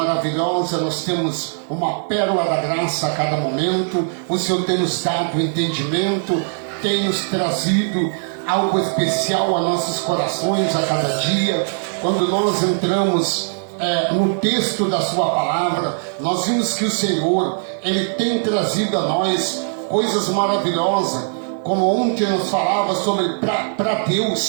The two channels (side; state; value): left; silent; 60 dB below the other